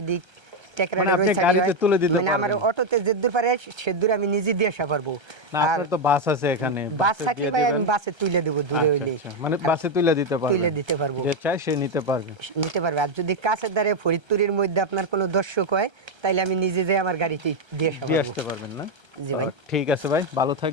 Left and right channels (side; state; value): left; late; 1.3 ms